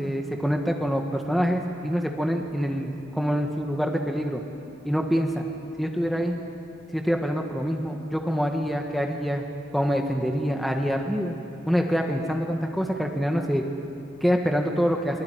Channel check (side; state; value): both; normal; correlation 0.90